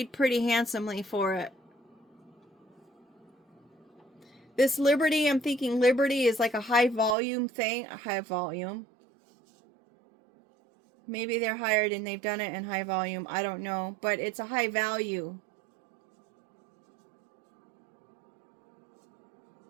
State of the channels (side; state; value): left; drops out; at 7.2 s